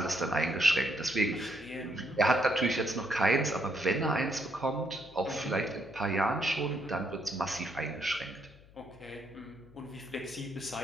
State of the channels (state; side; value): noise; left; hum, 23 dB below the sound